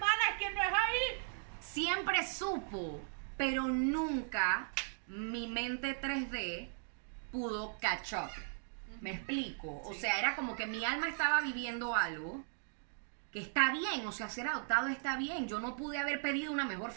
es que no es ahí. siempre supo, pero nunca mi mente 3D pudo catch up. ¿Me explico? O Sí. sea, era como que mi alma estaba viviendo algo que está bien, o sea, ser adoptado está bien. Yo no pude haber pedido una mejor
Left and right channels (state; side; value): silent; left; digital silence